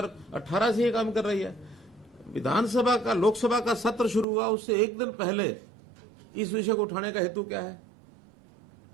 से ये काम कर रही है। विधानसभा का, लोकसभा का सत्र शुरू हुआ उससे एक दिन पहले इस विषय को उठाने का हेतु क्या है?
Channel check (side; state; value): left; drops out; at 4.2 s